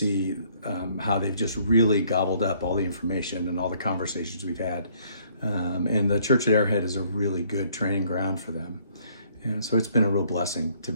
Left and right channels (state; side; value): inverted; both; correlation -0.63